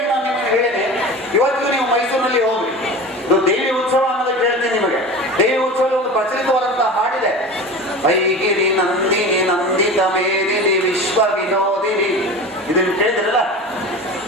ನಾನು ನಿಮಗೆ ಹೇಳಿದೆ. ಇವತ್ತಿಗೂ ನೀವು ಮೈಸೂರಿನಲ್ಲಿ ಹೋಗ್ರಿ, ಇದು ದೇವಿ ಉತ್ಸವ ಅನ್ನೋದಕ್ಕೆ ಹೇಳ್ತೀನಿ ನಿಮಗೆ. ದೇವಿ ಉತ್ಸವದಲ್ಲಿ ಒಂದು ಪ್ರಚಲಿತವಾದಂತಹ ಹಾಡಿದೆ, ಐಗಿರಿ ನಂದಿನಿ ನಂದಿತ ಮೇದಿನಿ ವಿಶ್ವ ವಿನೋದಿನಿ. ಇದನ್ನು ಕೇಳಿದ್ರಲ್ಲ?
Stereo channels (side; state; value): both; normal; correlation 0.33